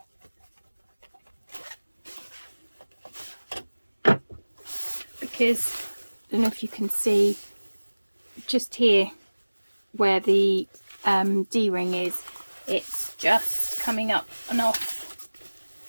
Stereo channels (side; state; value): both; inverted; correlation -1.00